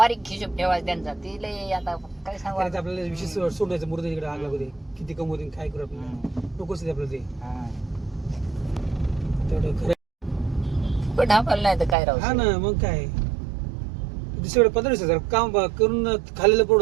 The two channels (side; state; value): left; drops out; at 12.0 s